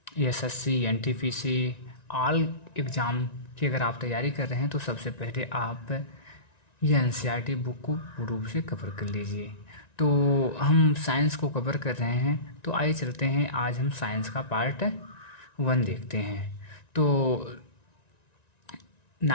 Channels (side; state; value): right; late; 1.9 ms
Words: SSC, NTPC, all exam की अगर आप तैयारी कर रहे हैं तो सबसे पहले आप ये एनसीईआरटी बुक को पूर्ण रूप से कवर कर लीजिए। तो हम साइंस को कवर कर रहे हैं, तो आइए चलते हैं, आज हम साइंस का पार्ट 1 देखते हैं। तो